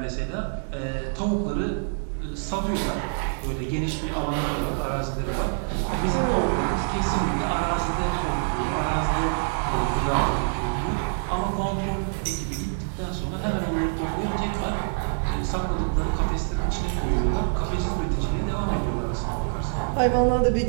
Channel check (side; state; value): left; silent; digital silence